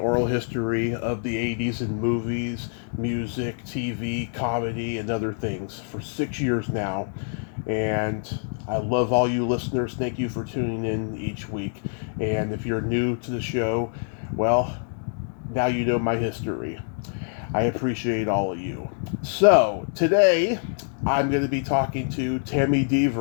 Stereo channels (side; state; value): right; silent; 61 dB below the other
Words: history of the 80s in movies, music, TV, comedy, and other things for 6 years now. And I love all you listeners. Thank you for tuning in each week. And if you're new to the show, well, now you know my history. I appreciate all of you. So today I'm going to be talking to Tami